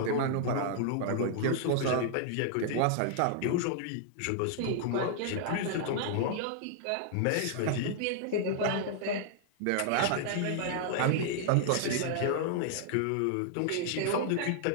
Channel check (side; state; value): both; different; correlation -0.01